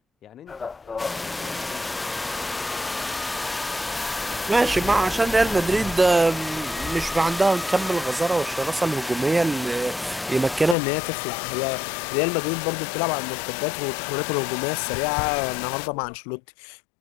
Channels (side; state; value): right; drops out; at 10.8 s